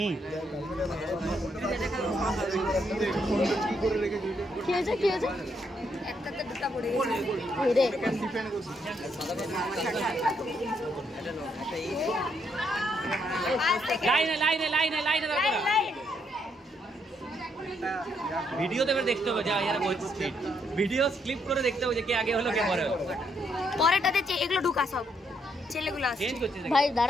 হয়েছে কি হয়েছে একটাতে দুটা পড়ে গেছে রে লাইনে ভিডিওতে দেখতে হবে যা यार बहुत स्पीड ভিডিও ক্লিপ করে দেখতে হবে যে কে আগে হলো কে পরে হলো পরেরটাতে এগুলো ঢুকা সব ছেলেগুলো আসছে চেঞ্জ করতে ভাই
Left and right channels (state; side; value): normal; both; correlation 0.75